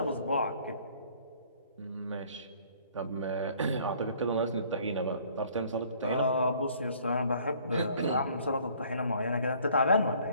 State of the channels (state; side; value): inverted; both; correlation -0.57